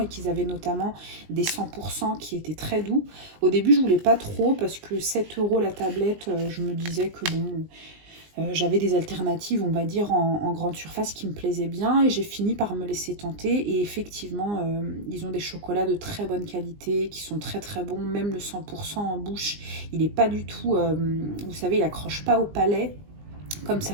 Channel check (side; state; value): left; late; 20 ms